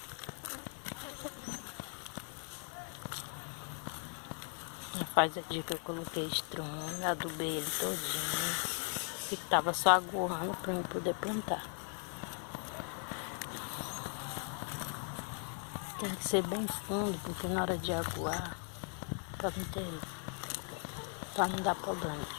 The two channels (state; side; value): quieter; right; 39.6 dB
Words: Faz aqui que eu coloquei estrume, adubei ele todinho, que tava só aguando para eu poder plantar. Tem que ser bem fundo, porque na hora de aguar, para não dar problema,